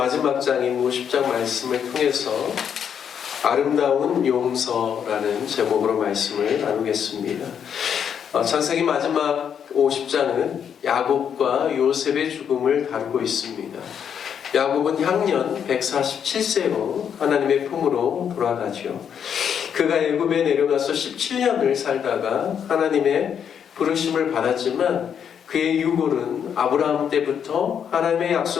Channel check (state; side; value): quieter; right; 8.0 dB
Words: 장인 50장 말씀을 통해서 아름다운 용서라는 제목으로 말씀을 나누겠습니다. 창세기 마지막 50장은 야곱과 요셉의 죽음을 다루고 있습니다. 야곱은 향년 147세로 하나님의 품으로 돌아가죠. 그가 애굽에 내려가서 17년을 살다가 하나님의 부르심을 받았지만 그의 유골은 아브라함 때부터 하나님의